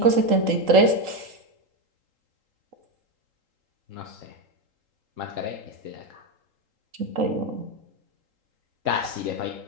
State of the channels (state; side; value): late; left; 3.8 ms